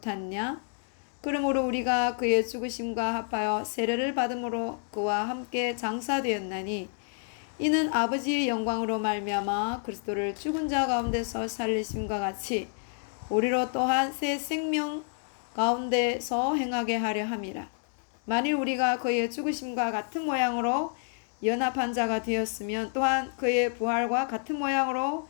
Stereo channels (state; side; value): silent; right; 59 dB below the other